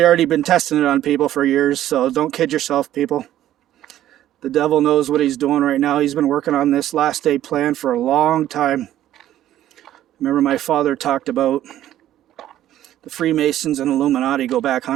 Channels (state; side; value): quieter; left; 12.7 dB